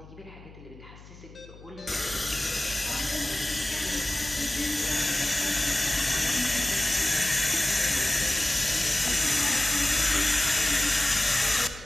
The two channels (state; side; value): noise; left; hum, 20 dB below the sound